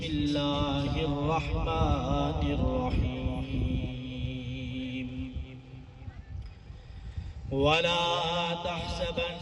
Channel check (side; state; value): both; identical; correlation 1.00